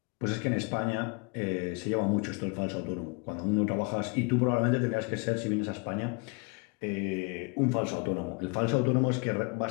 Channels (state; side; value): quieter; right; 31.8 dB